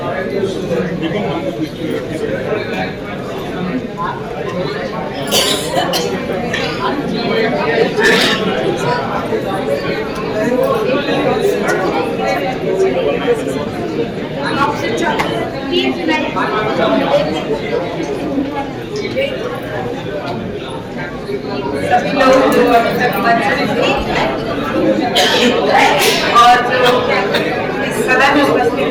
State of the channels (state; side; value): identical; both; correlation 1.00